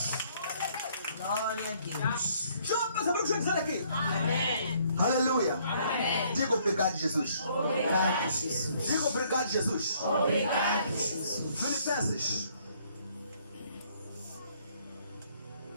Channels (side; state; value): both; inverted; correlation -0.64